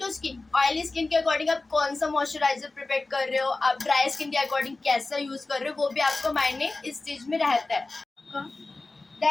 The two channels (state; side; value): quieter; right; 3.3 dB